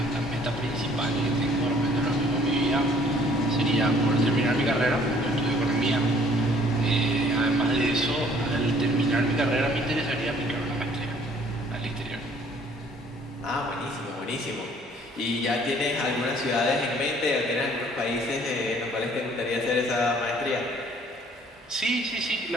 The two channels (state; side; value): normal; both; correlation 0.58